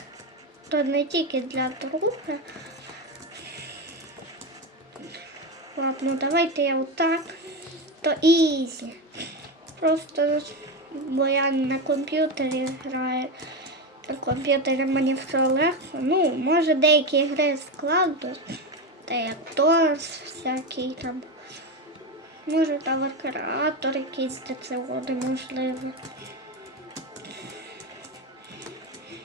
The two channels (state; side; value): normal; both; correlation 0.15